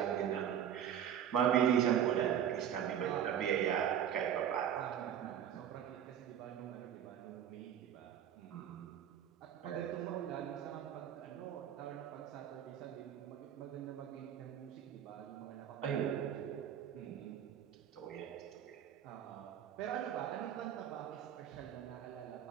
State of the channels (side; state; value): left; quieter; 9.5 dB